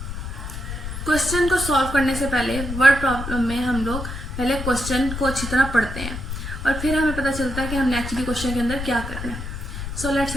क्वेश्चन को सॉल्व करने से पहले वर्ड प्रॉब्लम में हम लोग पहले क्वेश्चन को अच्छी तरह पढ़ते हैं और फिर हमें पता चलता है कि हमने एक्चुअली क्वेश्चन के अंदर क्या करना है. So let's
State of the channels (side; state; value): left; noise; rumble, 7 dB below the sound